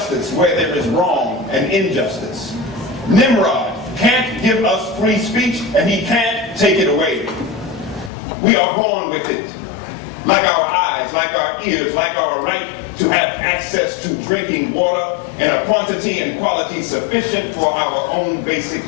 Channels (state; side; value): drops out; right; at 8.1 s